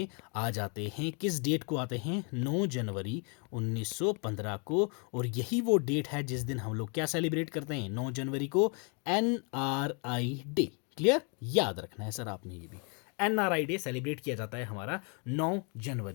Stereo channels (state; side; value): quieter; right; 36.5 dB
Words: आ जाते हैं। किस डेट को आते हैं, 9 जनवरी 1915 को। और यही वो डेट है जिस दिन हम लोग क्या सेलिब्रेट करते हैं, 9 जनवरी को NRI डे। क्लियर, याद रखना है सर आपने ये भी। NRI डे सेलिब्रेट किया जाता है हमारा 9